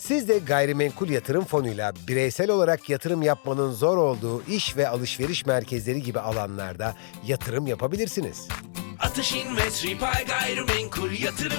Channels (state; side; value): silent; right; digital silence